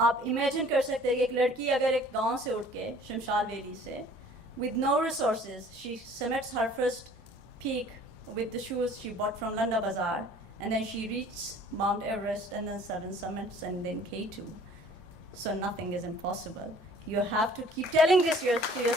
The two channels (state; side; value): normal; both; correlation 0.52